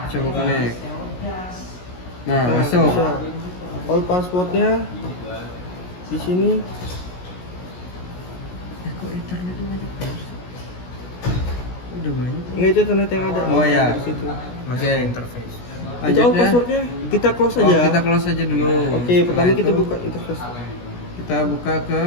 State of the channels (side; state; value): right; late; 17 ms